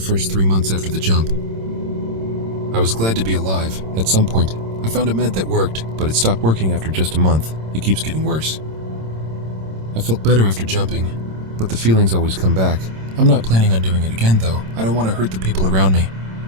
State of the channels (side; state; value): left; late; 26 ms